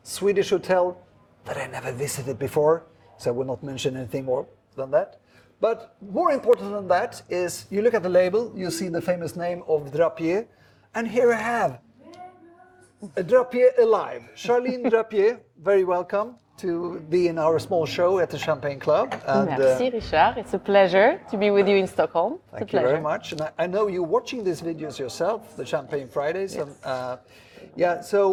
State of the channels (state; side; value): identical; both; correlation 1.00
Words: Swedish hotel that I never visited before, so I will not mention anything more than that. But more important than that is, you look at the label, you see the famous name of Drappier, and here I have a Drappier alive. Charline Drappier, very welcome to be in our small show at the Champagne Club. And, Merci, Richard. It's a pleasure to be with you in Stockholm. Thank you very much. And I know you're watching these videos yourself, the Champagne Fridays. Yes. And